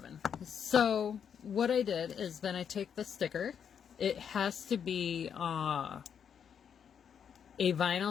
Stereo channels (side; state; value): right; quieter; 7.7 dB